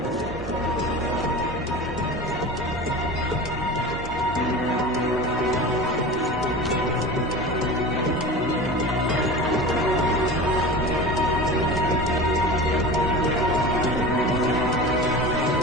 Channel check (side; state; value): both; normal; correlation 0.32